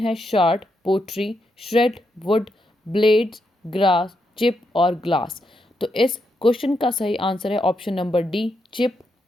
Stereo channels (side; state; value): both; normal; correlation 0.82